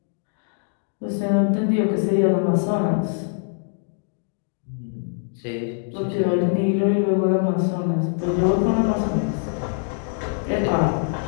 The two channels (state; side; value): silent; right; digital silence